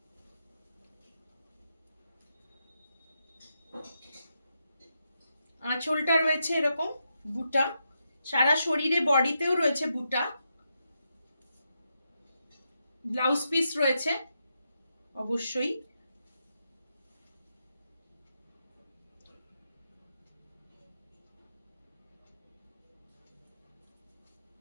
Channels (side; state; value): both; inverted; correlation -0.84